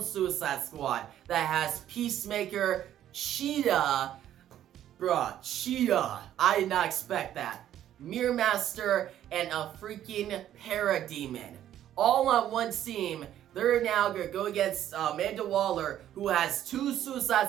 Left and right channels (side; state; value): left; quieter; 11.5 dB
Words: Suicide Squad that has Peacemaker, Cheetah, Cheetah, I did not expect that, Mirror Master, and a freaking Parademon. All on one team. They're now going to go against Amanda Waller, who has two